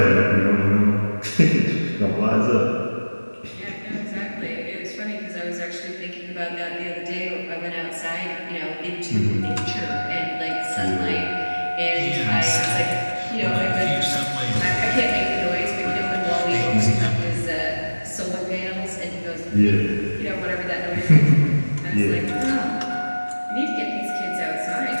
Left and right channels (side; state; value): both; inverted; correlation -1.00